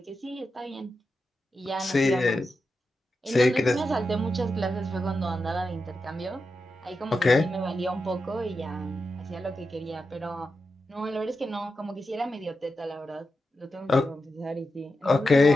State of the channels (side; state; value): both; normal; correlation 0.89